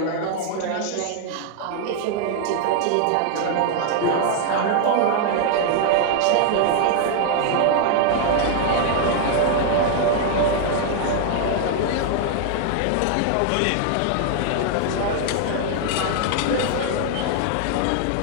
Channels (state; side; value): different; both; correlation 0.00